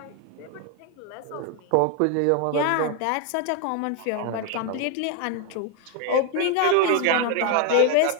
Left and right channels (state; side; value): different; both; correlation 0.01